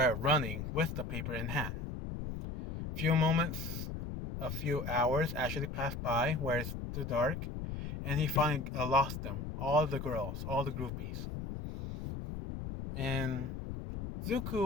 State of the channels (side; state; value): left; noise; rumble, 4 dB below the sound